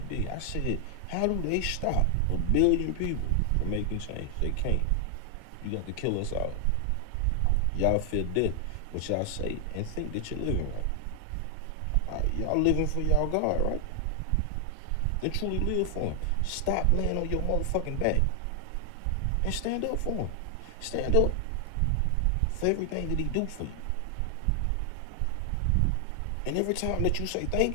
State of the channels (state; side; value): different; both; correlation 0.00